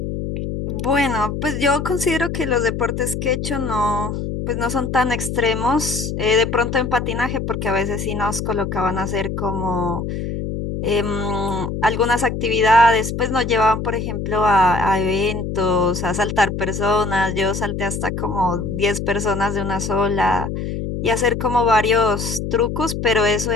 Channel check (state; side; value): noise; left; hum, 4 dB below the sound